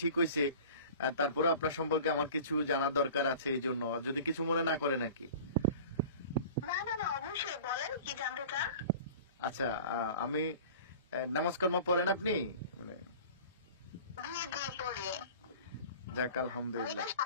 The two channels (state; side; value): inverted; both; correlation -0.41